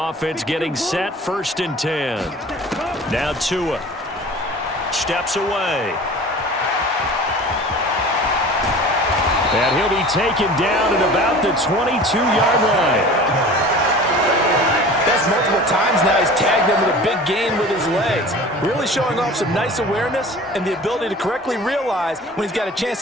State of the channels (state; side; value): normal; both; correlation 0.41